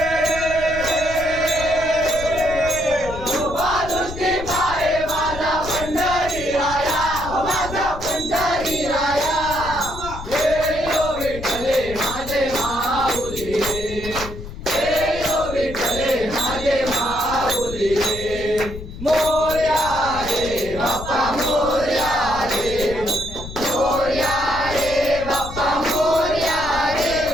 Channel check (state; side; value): noise; left; rumble, 11 dB below the sound